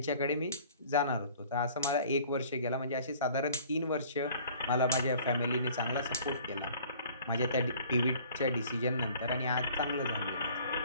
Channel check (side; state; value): both; inverted; correlation -0.51